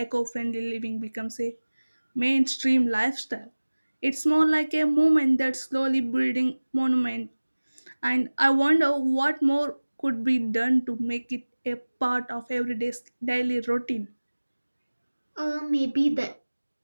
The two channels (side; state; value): both; inverted; correlation -1.00